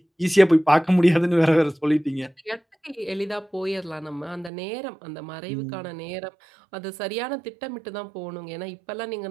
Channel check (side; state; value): left; drops out; at 4.5 s